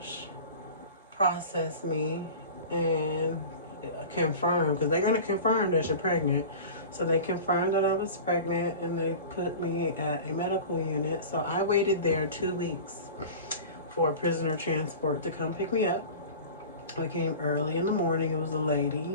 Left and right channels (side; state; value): both; inverted; correlation -0.36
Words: processed me and confirmed, because they're going to confirm that you're pregnant. So they confirmed that I was pregnant, and they put me at a medical unit. So I waited there 2 weeks for prisoner transport to come pick me up. I came early in the morning. It was a